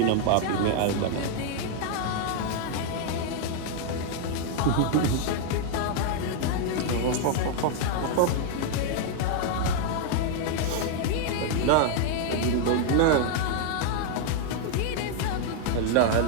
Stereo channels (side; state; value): both; different; correlation 0.00